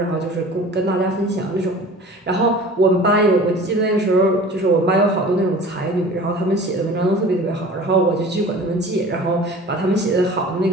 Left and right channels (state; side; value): normal; both; correlation 0.42